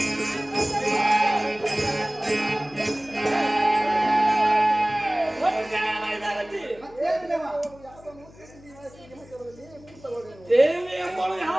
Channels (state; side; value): noise; left; hum, 23 dB below the sound